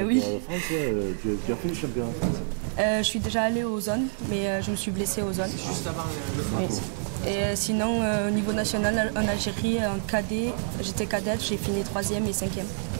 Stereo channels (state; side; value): silent; left; 60 dB below the other